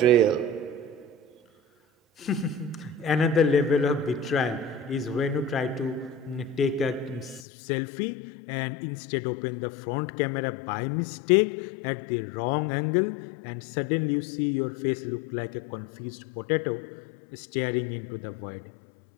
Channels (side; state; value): right; drops out; at 7.5 s